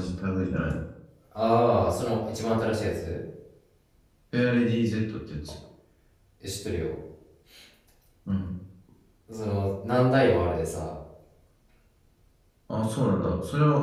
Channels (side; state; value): both; identical; correlation 1.00